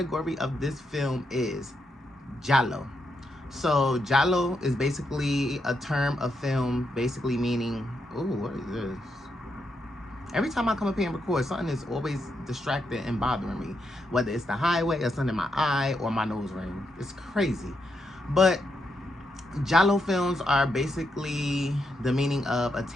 of this film is Giallo. So Giallo is basically a term of film, basically meaning, ooh, what is this? Every time I come up here and record, something is always distracting and bothering me, whether it's the highway or something in my eye or my nose ring. It's crazy. But Giallo films are basically the meaning of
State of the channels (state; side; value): normal; both; correlation 0.82